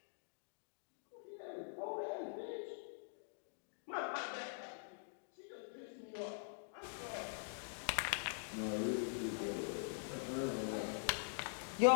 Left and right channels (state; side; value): silent; right; digital silence